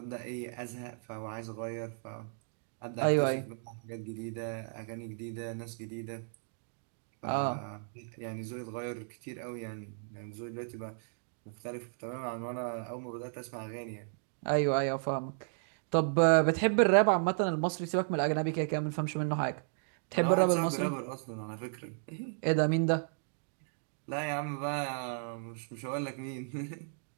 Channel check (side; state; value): left; silent; digital silence